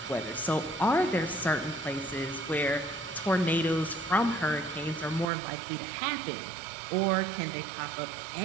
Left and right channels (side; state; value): left; drops out; at 5.2 s